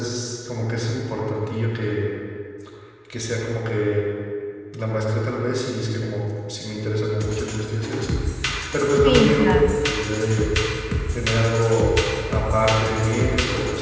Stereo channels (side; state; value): both; identical; correlation 1.00